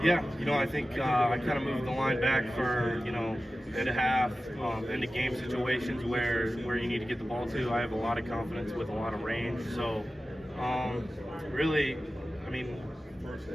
Yeah, I think I kind of moved the line back for, and a half into game situations where you need to get the ball to. I have a lot of confidence with a lot of range. So, really,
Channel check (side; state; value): both; normal; correlation 0.95